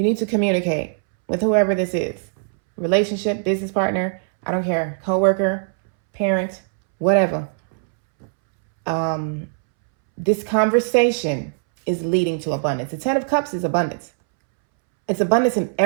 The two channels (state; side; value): silent; left; 65 dB below the other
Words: need to communicate with whoever this is. Relationship, business partner, I don't care, coworker, parent, whatever. This conversation is leading to abundance. The 10 of Cups is abundance. It's abundance in